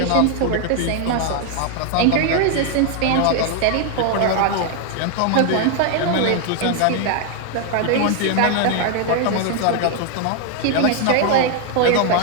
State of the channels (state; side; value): different; both; correlation 0.00